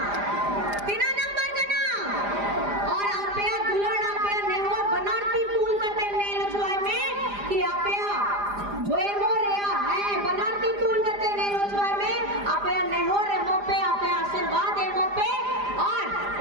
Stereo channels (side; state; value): left; late; 4.9 ms